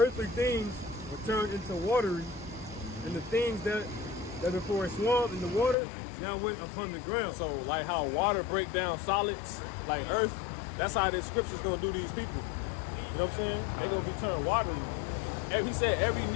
things were turned into watery, and the things that before a swamp in the water now went upon the ground. So like how water break down solids, like earth, that's how this scripture's gonna do these people. You know what I'm saying? They're gonna be turned watery. And he said every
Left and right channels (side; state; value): right; drops out; at 5.8 s